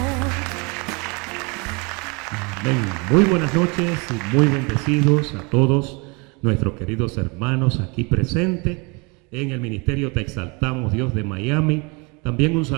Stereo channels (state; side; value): quieter; left; 29.6 dB